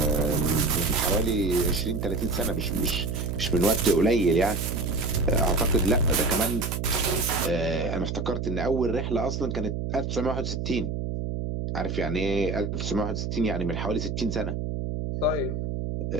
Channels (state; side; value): noise; right; hum, 3 dB below the sound